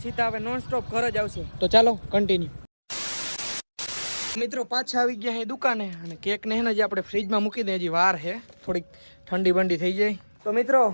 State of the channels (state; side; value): inverted; both; correlation -1.00